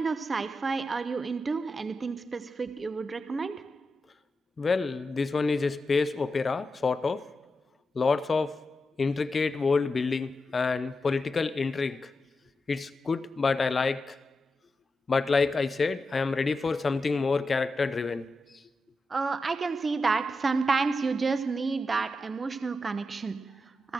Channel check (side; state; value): both; normal; correlation 0.89